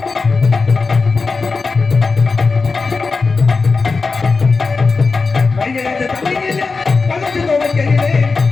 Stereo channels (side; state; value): right; quieter; 4.3 dB